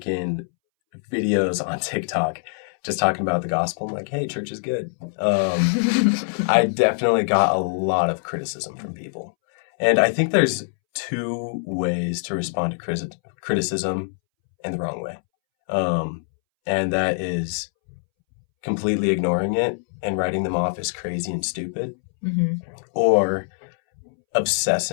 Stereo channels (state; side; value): silent; right; 63 dB below the other